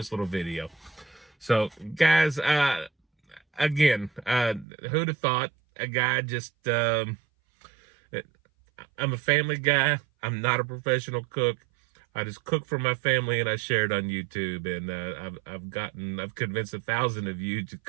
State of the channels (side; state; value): left; drops out; at 4.7 s